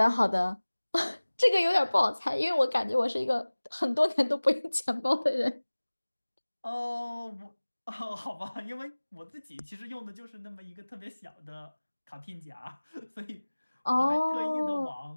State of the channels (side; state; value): both; inverted; correlation -1.00